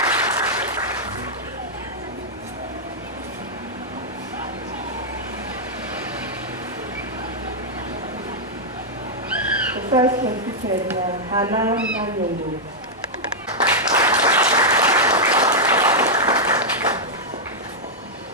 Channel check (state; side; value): normal; both; correlation -0.05